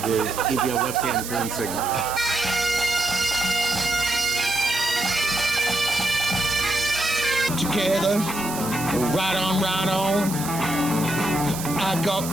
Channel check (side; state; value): right; noise; hiss, 8 dB below the sound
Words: give you a left-hand turn signal. Together, right on, I got